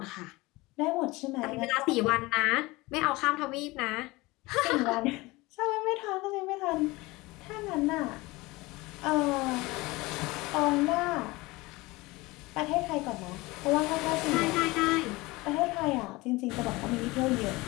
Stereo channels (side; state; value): right; quieter; 21.9 dB